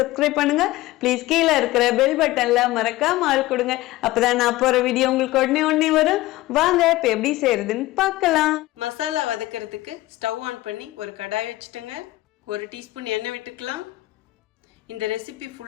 பண்ணுங்க. ப்ளீஸ் கீழே இருக்கிற பெல் பட்டன்ல மறக்காம ஆள் கொடுங்க. அப்பதான் நான் போற வீடியோ உங்களுக்கு உடனே வரும். வாங்க இப்ப எப்படி செய்யறதுன்னு பார்க்கலாம். மசாலா வதக்கிறதுக்கு ஸ்டவ் ஆன் பண்ணி ஒரு கடாய் வச்சுட்டுங்க. 1 டீஸ்பூன் எண்ணெய் விட்டுக்கலாம். இந்த ரெசிபி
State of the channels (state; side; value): quieter; right; 17.7 dB